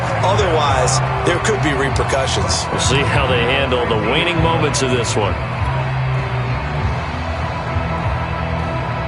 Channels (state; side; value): identical; both; correlation 1.00